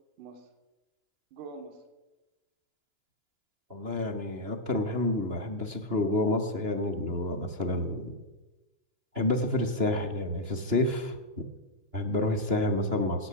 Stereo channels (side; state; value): left; late; 2.9 ms